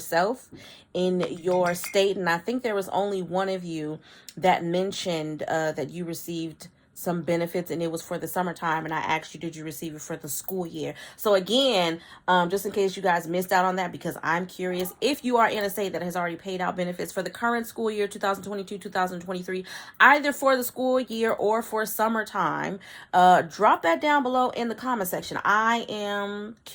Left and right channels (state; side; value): identical; both; correlation 1.00